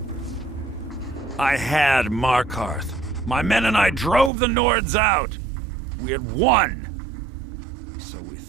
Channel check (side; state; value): left; drops out; at 4.3 s